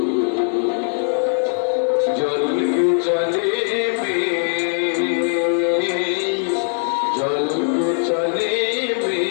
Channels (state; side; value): silent; right; digital silence